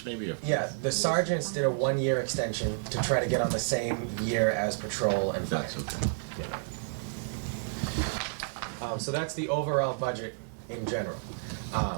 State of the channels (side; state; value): left; silent; 57 dB below the other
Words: maybe? Or? Yeah, the sergeants did a 1-year extension to try to get on the same year as patrol and fire. That's okay. So that's the overall budget in general.